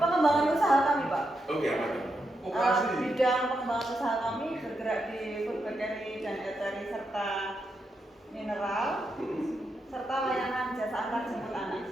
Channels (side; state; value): both; normal; correlation 0.84